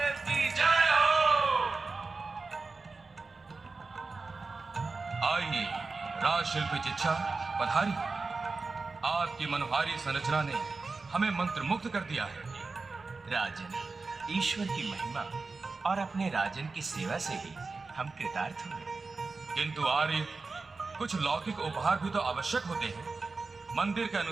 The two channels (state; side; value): quieter; left; 4.0 dB